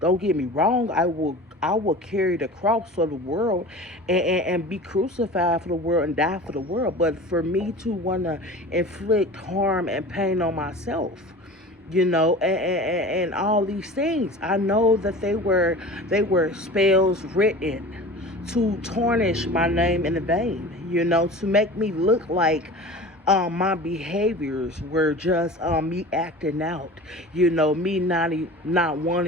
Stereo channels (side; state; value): both; normal; correlation 0.37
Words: get me wrong. I will carry the cross for the world, and be crucified for the world and die for the world. But for me to want to inflict harm and pain on myself, and all these things, I know that they were spells written to tarnish my name in vain, to make me look like my behaviors were just me acting out, me not